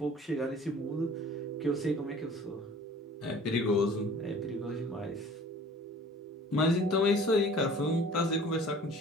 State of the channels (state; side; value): normal; both; correlation 0.48